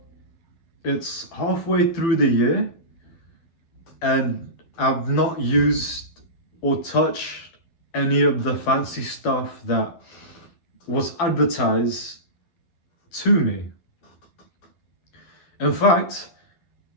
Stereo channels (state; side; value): late; right; 12 ms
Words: it's halfway through the year and I've not used or touched any of the fancy stuff that was advertised to me. In fact,